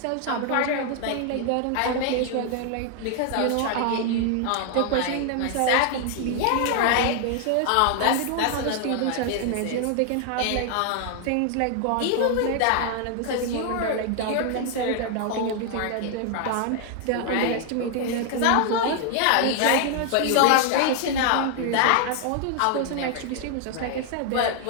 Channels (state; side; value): different; both; correlation 0.00